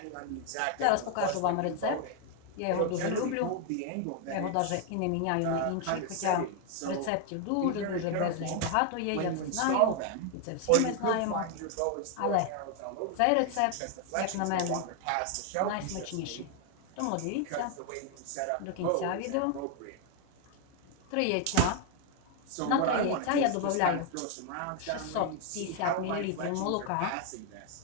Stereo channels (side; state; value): both; different; correlation 0.00